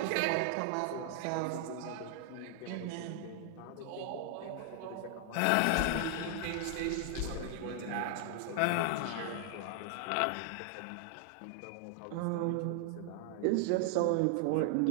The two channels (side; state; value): both; different; correlation 0.00